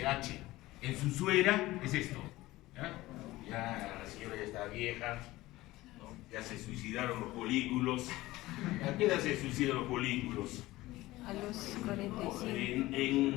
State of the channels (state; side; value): quieter; right; 18.1 dB